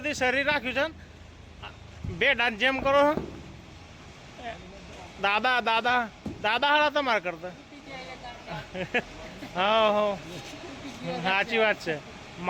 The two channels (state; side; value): identical; both; correlation 1.00